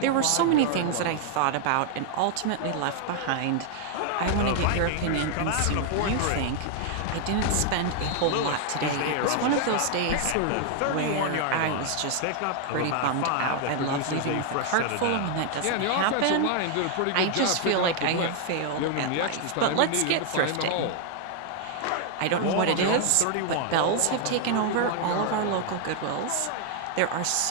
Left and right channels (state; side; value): different; both; correlation 0.00